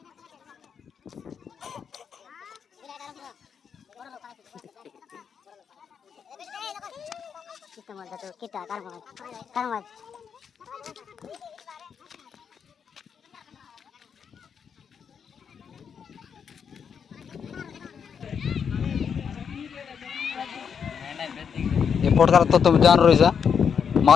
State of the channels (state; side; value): quieter; right; 7.0 dB